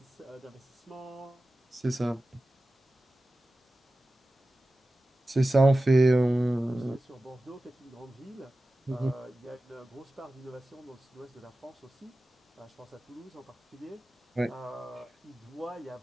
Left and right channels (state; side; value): normal; both; correlation 0.95